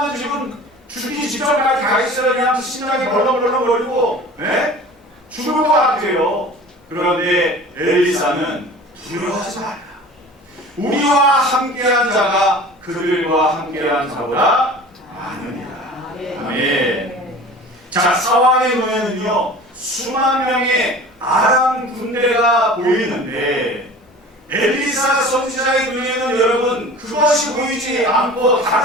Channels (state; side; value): normal; both; correlation 0.41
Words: 지금 죽기 직전까지 가 있어요. 그냥 심장이 벌렁벌렁거리고 죽을 것 같아요. 그런데 엘리사는 두려워하지 말라. 우리와 함께한 자가 그들과 함께한 자보다 많으니라. 아멘. 자, 사환의 눈에는요, 수만 명의 아람 군대가 보이는데 엘리사 선지자의 눈에는 여러분 그것이 보이지 않고